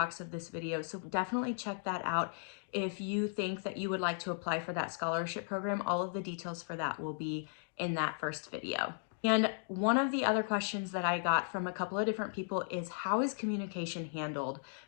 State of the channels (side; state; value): right; silent; digital silence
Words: of this video, so definitely check that out. If you think that you would like to apply for that scholarship program, all of the details for that will be in that first video. And one of the other questions that I got from a couple of different people is, how is communication handled